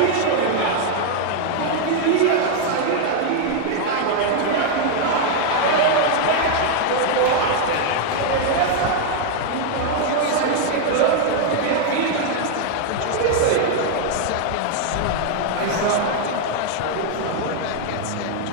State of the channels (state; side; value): different; both; correlation 0.00